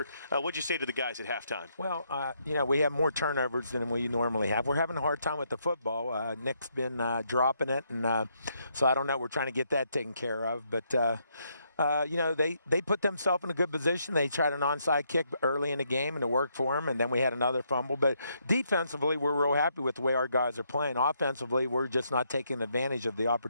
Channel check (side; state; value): both; inverted; correlation -0.75